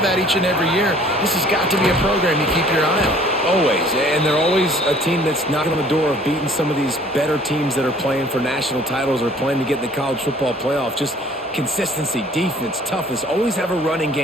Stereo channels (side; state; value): both; normal; correlation 0.55